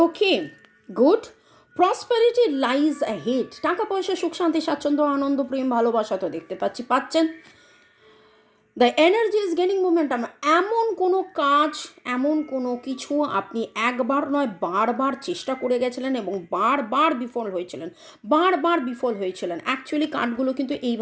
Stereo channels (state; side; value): identical; both; correlation 1.00